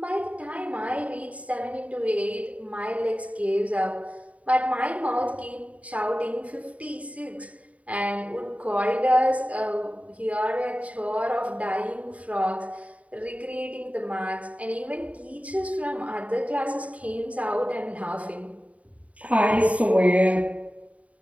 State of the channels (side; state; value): left; late; 0.067 ms